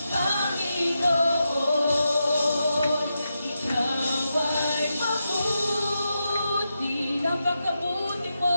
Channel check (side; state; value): both; inverted; correlation -0.87